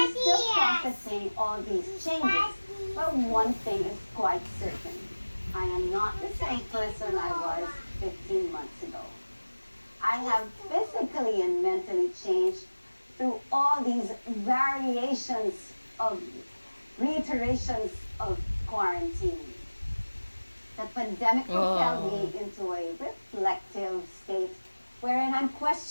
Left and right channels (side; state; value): both; inverted; correlation -1.00